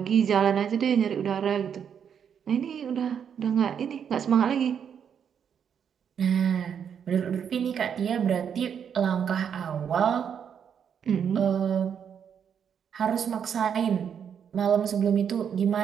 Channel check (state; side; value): quieter; left; 7.8 dB